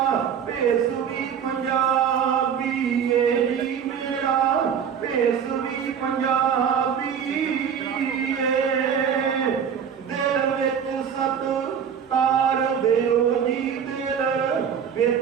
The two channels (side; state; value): left; quieter; 7.7 dB